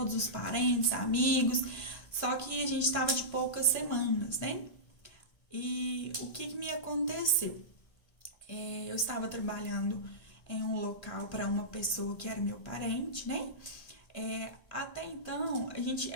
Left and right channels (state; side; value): late; right; 1.5 ms